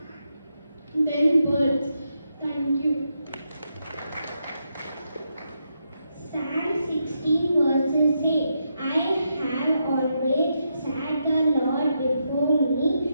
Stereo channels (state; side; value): inverted; both; correlation -0.82